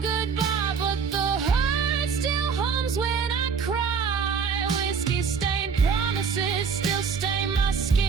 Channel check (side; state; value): left; quieter; 5.9 dB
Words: goodbye, but the hurt still hums when I cry. Whiskey-stained promises still stain my